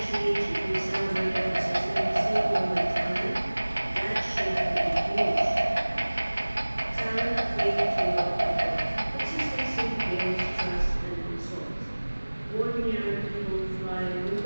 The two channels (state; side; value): inverted; both; correlation -1.00